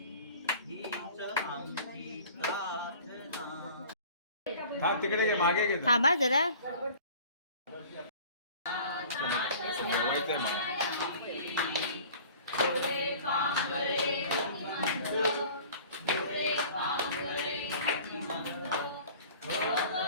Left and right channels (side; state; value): both; inverted; correlation -0.45